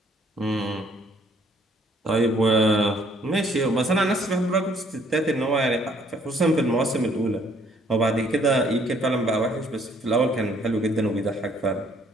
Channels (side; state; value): both; normal; correlation 0.64